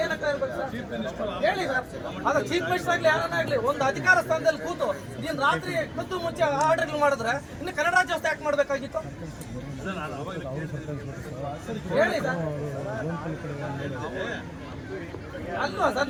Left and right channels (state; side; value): identical; both; correlation 1.00